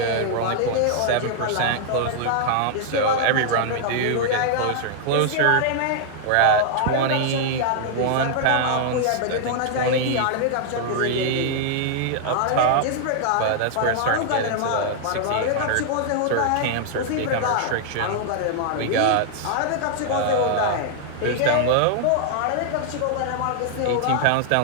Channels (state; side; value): different; both; correlation 0.00